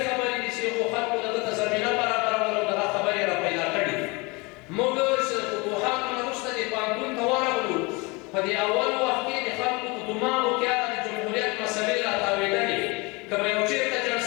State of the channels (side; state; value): right; quieter; 26.9 dB